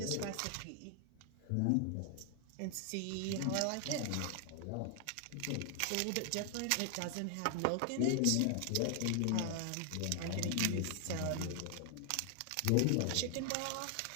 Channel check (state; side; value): different; both; correlation 0.00